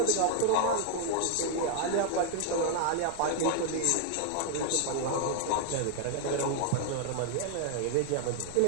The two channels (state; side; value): different; both; correlation 0.00